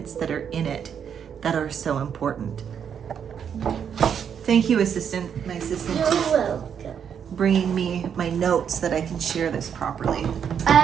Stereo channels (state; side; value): quieter; left; 7.9 dB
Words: that are in it that are so important. Thank you, assistant. My assistant You're is welcome. bringing me my notes so that I can share this properly.